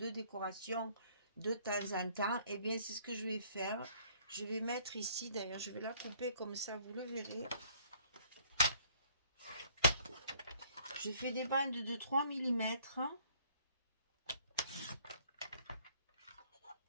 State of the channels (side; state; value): both; inverted; correlation -0.61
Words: décoration de temps en temps. Et bien, c'est ce que je vais faire. Je vais mettre ici, d'ailleurs, je vais la couper comme ça, vous le verrez. Je fais des bandes de 3 mm.